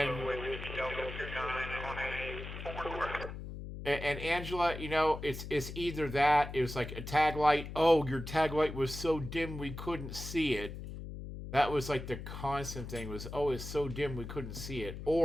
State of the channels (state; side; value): noise; left; hum, 9 dB below the sound